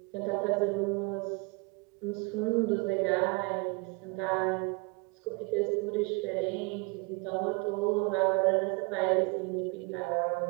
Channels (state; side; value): quieter; left; 29.2 dB